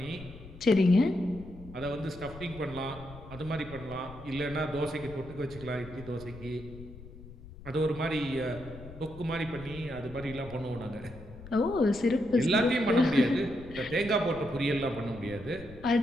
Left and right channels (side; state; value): left; noise; rumble, 16 dB below the sound